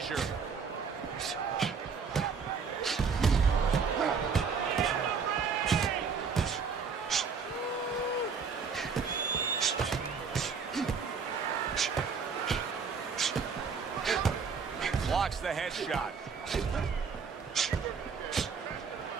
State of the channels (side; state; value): left; quieter; 5.7 dB